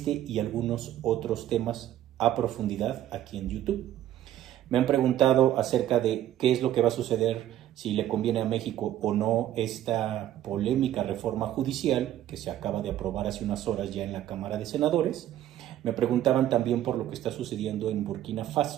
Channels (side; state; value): left; quieter; 12.3 dB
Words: y algunos otros temas a profundidad aquí en YouTube. Me han preguntado acerca de qué es lo que va a suceder, si le conviene a México o no esta polémica reforma judicial que se acaba de aprobar hace unas horas ya en la Cámara de Senadores. Me preguntaban también por lo que está sucediendo en Burkina